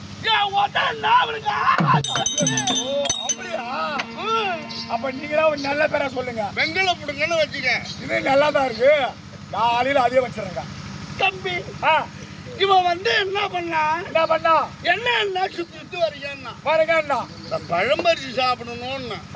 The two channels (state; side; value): identical; both; correlation 1.00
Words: அப்படியா? அப்ப நீங்களா ஒரு நல்ல பேரை சொல்லுங்க. வெங்கல புடுங்கன்னு வச்சுக்க. இது நல்லாதான் இருக்கு. காலையில அதே வச்சிருங்க. தம்பி இவன் என்ன பண்ணா என்ன சுத்தி வரீங்கன்னா பாருங்க, பழம்பரிசி சாப்பிடணும்னு.